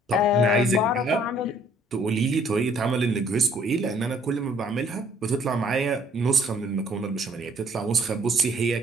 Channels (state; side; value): normal; both; correlation 0.61